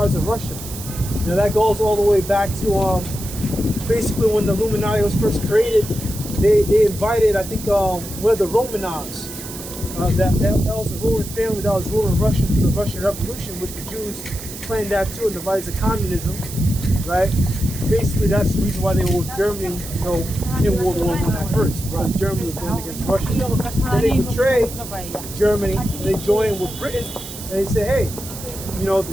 of Russia. You know, that goes all the way back to basically when the Illuminati was first created. They invited, I think, one of the Romanovs. That was a ruling family that was ruling Russia to the Russian Revolution, which the Jews planned that too and devised communism, right? Basically, that's the reason why they were with Germany, you know, in World War I at first. Because Germany was going against Russia. Then they betrayed Germany, and they joined with Britain, and they say, hey, you know,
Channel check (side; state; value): right; noise; hiss, 11 dB below the sound